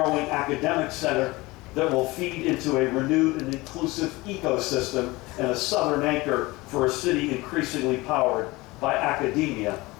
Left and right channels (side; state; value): right; quieter; 21.6 dB